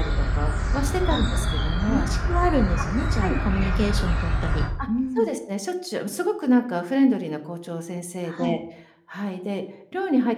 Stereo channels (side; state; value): both; identical; correlation 1.00